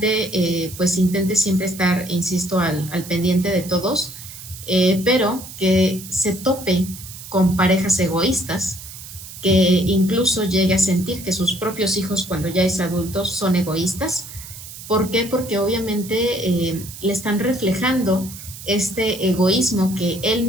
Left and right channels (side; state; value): right; noise; hiss, 14 dB below the sound